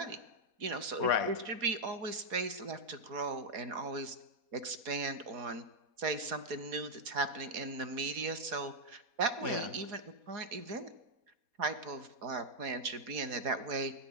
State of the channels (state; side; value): late; left; 4.2 ms